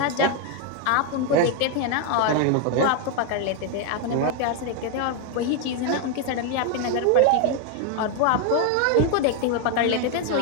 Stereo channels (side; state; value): both; different; correlation 0.01